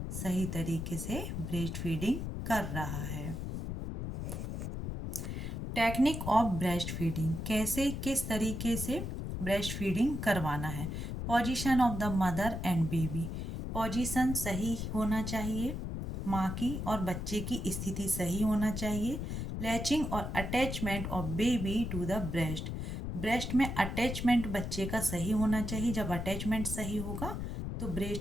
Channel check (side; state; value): left; noise; rumble, 4 dB below the sound